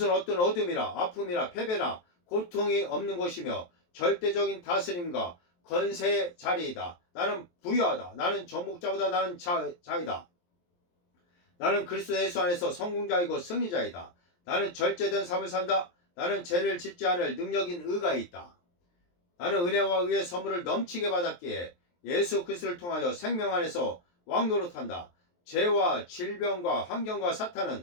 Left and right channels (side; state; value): right; late; 23 ms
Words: 어떤 어둠이나 아픔이나 패배나 고통이 없는 것이며 절대적인 다스림과 건세의 자리이다. 나는 부유하다. 나는 정복자보다 나는 자이다. 나는 그리스도 예수 안에서 성공자이고 승리자이다. 나는 절제된 삶을 산다. 나는 죄를 짓지 않을 능력인 의가 있다. 나는 은혜와 의의 선물을 넘치게 받았기에 예수 그리스도를 통하여 생명 안에서 왕노릇한다. 죄와 질병과 환경과